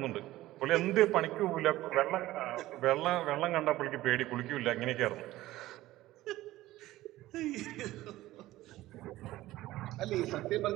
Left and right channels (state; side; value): quieter; left; 16.4 dB